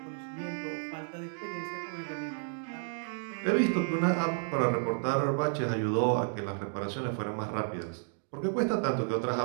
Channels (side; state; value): left; silent; digital silence